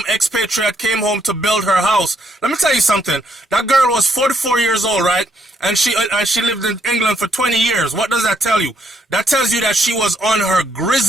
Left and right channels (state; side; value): normal; both; correlation 0.73